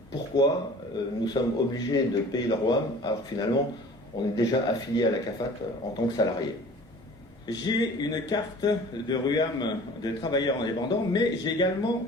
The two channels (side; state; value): both; normal; correlation 0.45